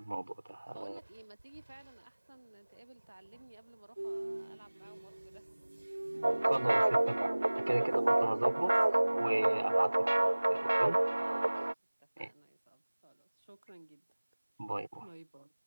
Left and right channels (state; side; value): inverted; both; correlation -1.00